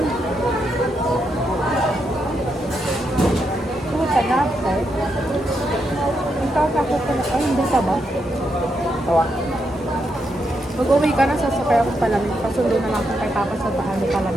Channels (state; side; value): normal; both; correlation 0.81